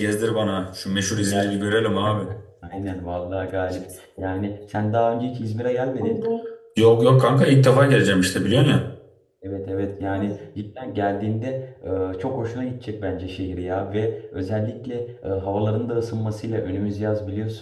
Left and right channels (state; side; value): identical; both; correlation 1.00